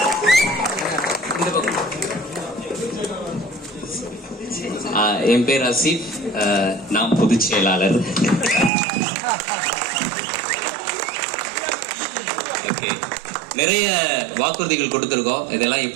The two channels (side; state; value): left; drops out; at 8.7 s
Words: என் பேர் அசீப், நான் பொதுச் செயலாளர். ஓகே, நிறைய வாக்குறுதிகள் கொடுத்துருக்கோம். இதெல்லாம்